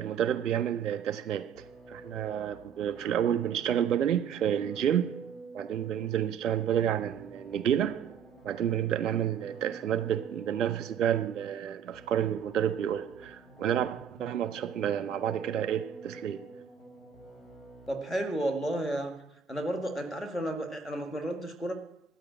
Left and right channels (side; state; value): left; quieter; 7.7 dB